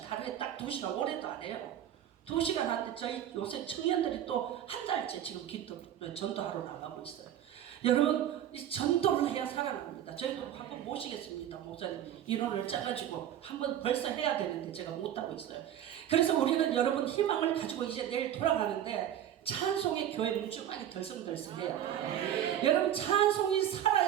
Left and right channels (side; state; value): left; quieter; 10.9 dB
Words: 하루에 딱 2시간, 올해도 안 해요. 2시간 하는데 저희 요새 청년들이 또 한 달째 지금 전도하러 나가고 있어요. 여러분 이 전도를 해야 살아납니다. 저희도 한번 모시겠습니다. 목사님 인원을 짜가지고 한번 벌써 해야 되는데 제가 못하고 있어요. 그래서 우리는 여러분 희망을 가지고 이제 내일 돌아가는데 찬송의 교회 물주만이 덜성덜성해요. 여러분 찬송이